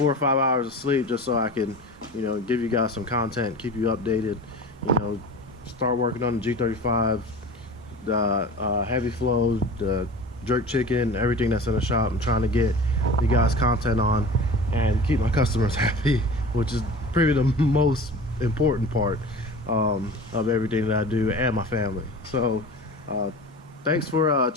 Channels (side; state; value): both; normal; correlation 0.37